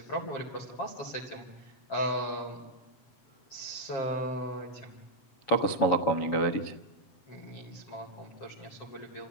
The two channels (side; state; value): right; late; 7.2 ms